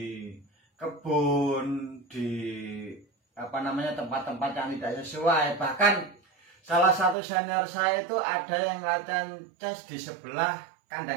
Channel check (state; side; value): drops out; left; at 7.2 s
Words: kebun, di tempat-tempat yang tidak sesuai. Bahkan salah satu senior saya itu ada yang latihan chest di sebelah